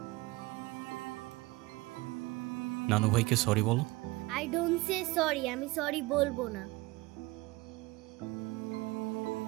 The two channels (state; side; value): quieter; left; 21.6 dB